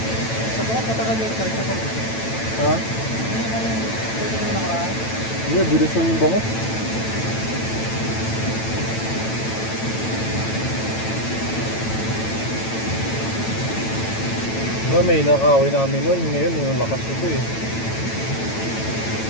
Sa bukas matagal yung church ako. Ha? Iya, bilis yung bangus. May nakawin namin nun. Ngayon, yung lakas ito eh.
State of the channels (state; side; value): late; right; 9.0 ms